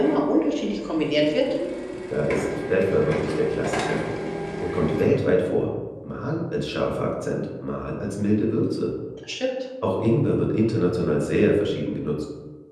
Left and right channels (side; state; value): both; identical; correlation 1.00